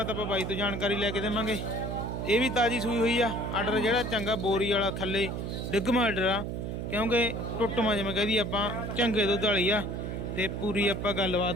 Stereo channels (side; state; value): right; noise; hum, 4 dB below the sound